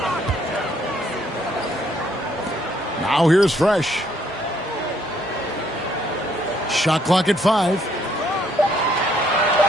Now here's Fresh. Shot clock at 5.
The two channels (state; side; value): normal; both; correlation 0.68